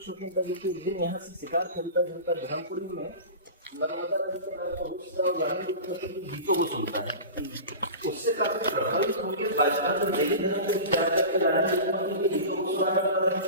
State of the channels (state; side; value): inverted; both; correlation -0.32